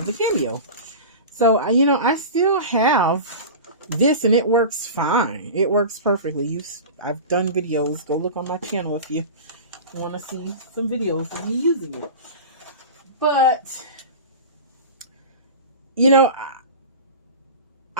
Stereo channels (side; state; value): both; inverted; correlation -0.31